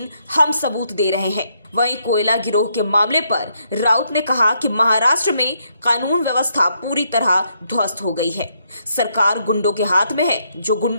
हम सबूत दे रहे हैं। वहीं कोयला गिरोह के मामले पर राउत ने कहा कि महाराष्ट्र में कानून व्यवस्था पूरी तरह ध्वस्त हो गई है। सरकार गुंडों के हाथ में है जो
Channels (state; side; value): inverted; both; correlation -0.75